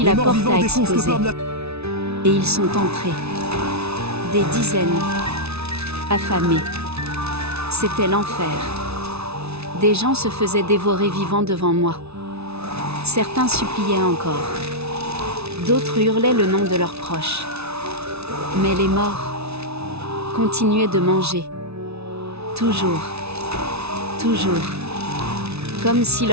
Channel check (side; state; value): left; late; 0.80 ms